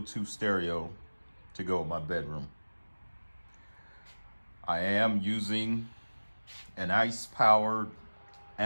stereo to go in my bedroom. I am using an ICE-powered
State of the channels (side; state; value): both; inverted; correlation -1.00